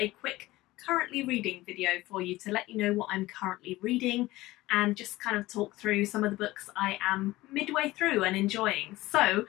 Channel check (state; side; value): quieter; right; 18.4 dB